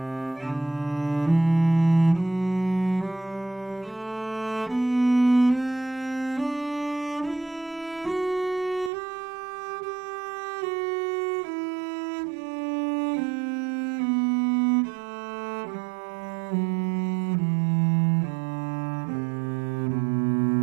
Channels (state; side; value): drops out; left; at 8.9 s